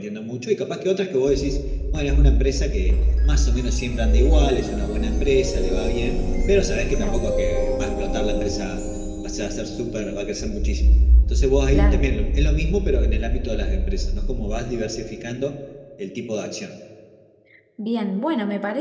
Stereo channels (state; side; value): identical; both; correlation 1.00